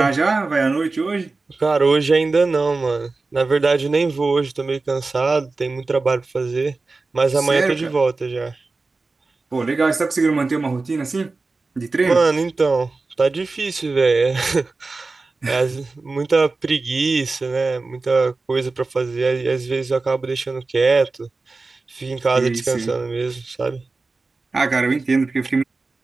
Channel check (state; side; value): quieter; left; 3.7 dB